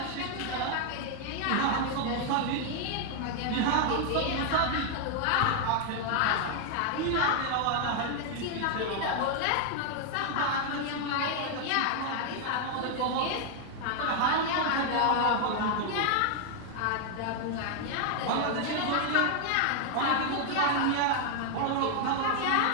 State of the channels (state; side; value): different; both; correlation 0.00